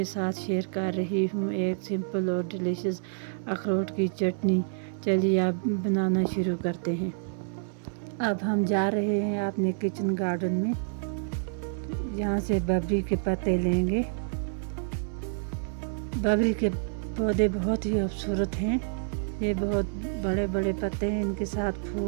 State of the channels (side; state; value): left; silent; 58 dB below the other